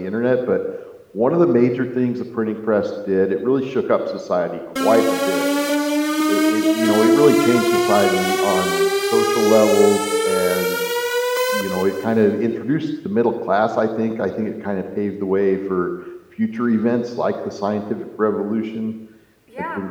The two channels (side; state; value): both; identical; correlation 1.00